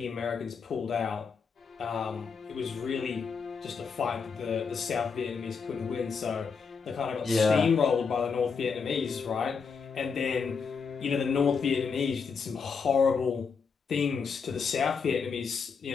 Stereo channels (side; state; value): right; quieter; 5.6 dB